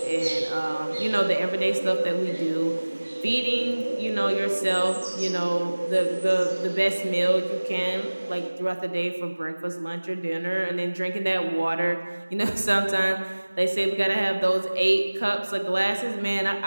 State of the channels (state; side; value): inverted; both; correlation -1.00